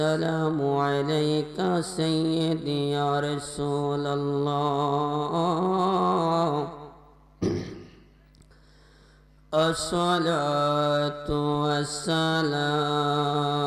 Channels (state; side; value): identical; both; correlation 1.00